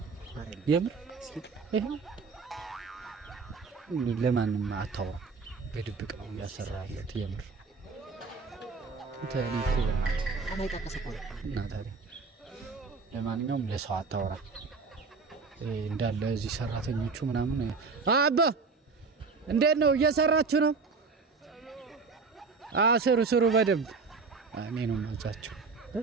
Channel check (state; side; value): quieter; left; 4.6 dB